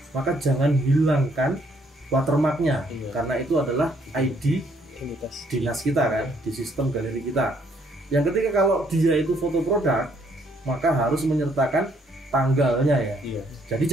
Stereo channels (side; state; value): both; normal; correlation 0.68